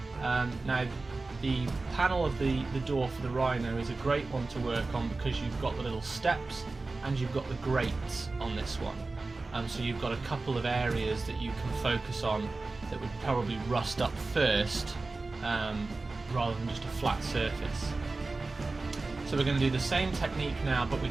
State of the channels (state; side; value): quieter; left; 3.5 dB